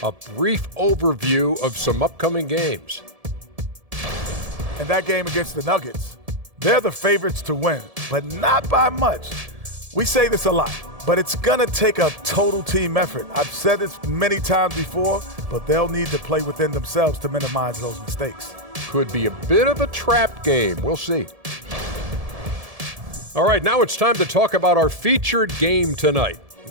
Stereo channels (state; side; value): late; left; 1.7 ms